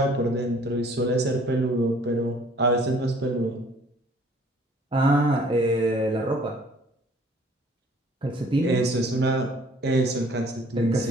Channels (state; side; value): normal; both; correlation 0.56